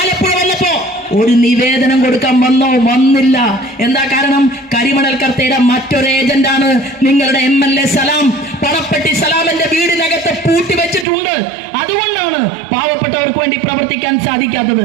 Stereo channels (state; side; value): drops out; left; at 11.1 s